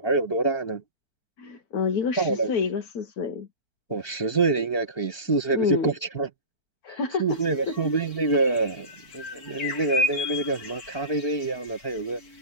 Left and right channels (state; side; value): late; right; 4.5 ms